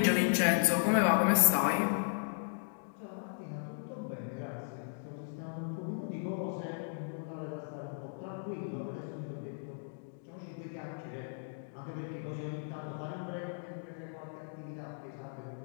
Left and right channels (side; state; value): right; silent; digital silence